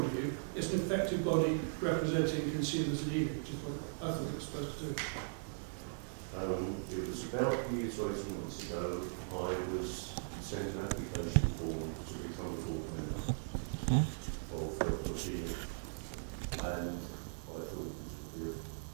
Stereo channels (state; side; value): silent; left; digital silence